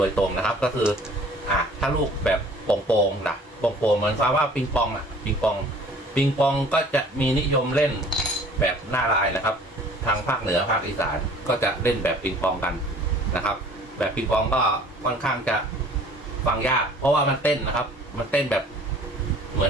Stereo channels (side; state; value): both; normal; correlation 0.51